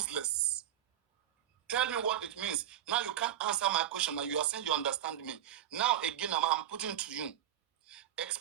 Tell me what it means. Now you can't answer my question. Now you are saying you understand me. Now again, I'm putting to you.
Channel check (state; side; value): quieter; left; 11.1 dB